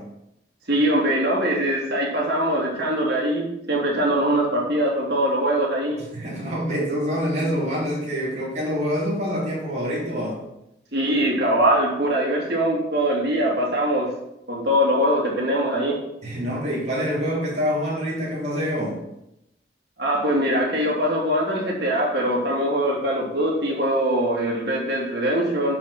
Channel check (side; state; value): both; normal; correlation 0.19